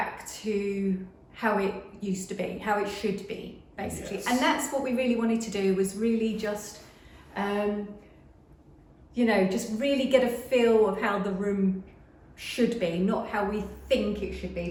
to how it used to be, how it should be, basically. And that's what we really wanted to do, was really just just really get a feel of how the room should be, not how we think it should be,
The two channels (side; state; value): both; identical; correlation 1.00